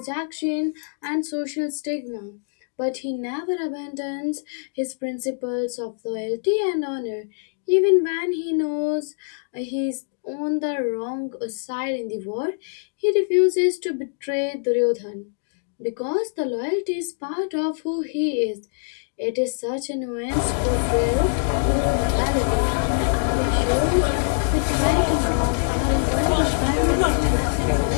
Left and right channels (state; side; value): silent; right; digital silence